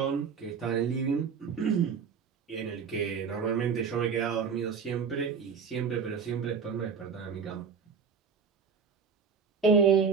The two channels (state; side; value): quieter; left; 6.0 dB